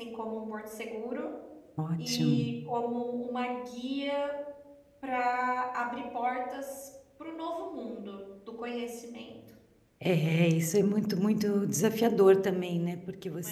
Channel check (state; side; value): identical; both; correlation 1.00